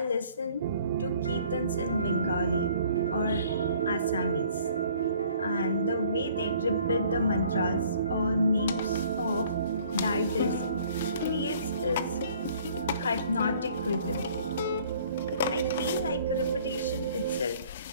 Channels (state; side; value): inverted; both; correlation -0.56